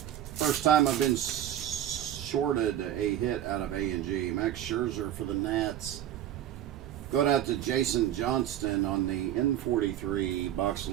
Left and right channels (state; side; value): quieter; left; 11.5 dB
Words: First time I've been shorted a hit out of A&G. Max Scherzer for the Nats. Going out to Jason Johnston on the N43 box